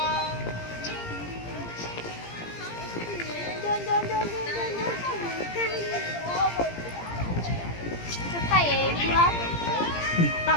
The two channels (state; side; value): late; right; 17 ms